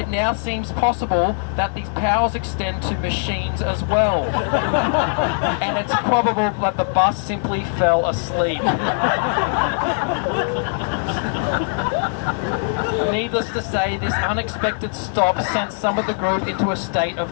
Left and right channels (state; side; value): silent; right; digital silence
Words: now seems possible that these powers extend to machines as well. And it's probable that the bus simply fell asleep. Needless to say, this unexpected stop sent some of the group into a state